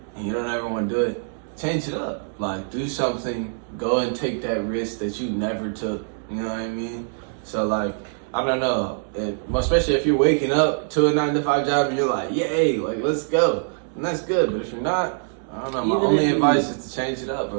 and you don't ever want to do it, change it up. Like, do something. Go and take that risk that you never took. You know what I mean? So, like, I don't know. Especially if you're waking up to a 9-to-5 job and you're like, yay, like, let's go. And that's good. But if you're not, I don't know. My only advice is to change it up,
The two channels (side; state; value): left; silent; 62 dB below the other